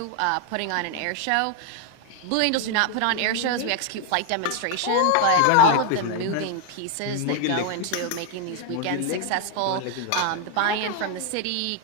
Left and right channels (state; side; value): different; both; correlation 0.01